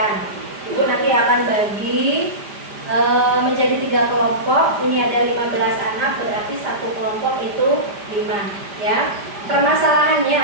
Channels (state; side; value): late; left; 5.0 ms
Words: Ibu nanti akan bagi menjadi 3 kelompok. Ini ada 15 anak, berarti satu kelompok itu 5 ya. Permasalahannya